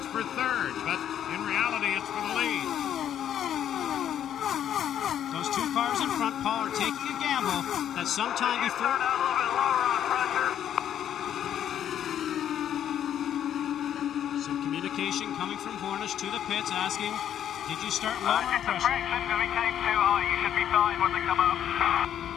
for third, but in reality it's for the lead. Those two cars in front, Paul, are taking a gamble that sometime before... Some communication coming from Hornish to the pits asking, did you start lowering pressure? We came too high. You should be fine when they come up.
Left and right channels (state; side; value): quieter; right; 10.1 dB